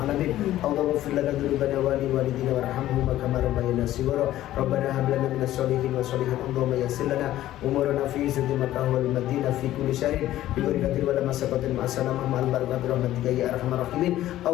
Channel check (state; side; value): quieter; right; 13.9 dB